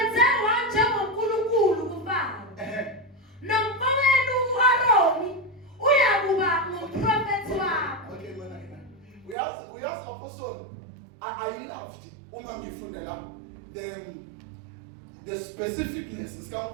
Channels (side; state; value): left; drops out; at 9.3 s